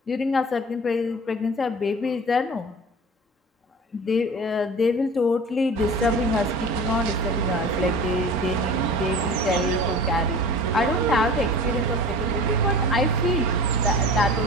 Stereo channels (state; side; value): normal; both; correlation 0.38